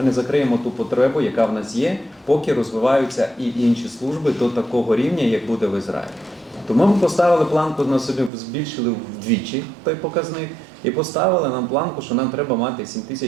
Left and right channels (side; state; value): left; drops out; at 8.3 s